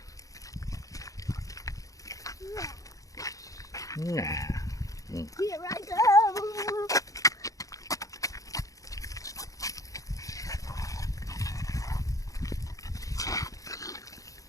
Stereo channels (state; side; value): late; right; 0.16 ms